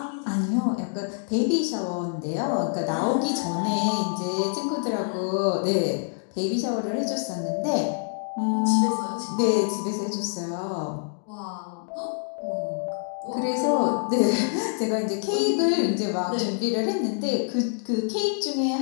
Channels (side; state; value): right; silent; 61 dB below the other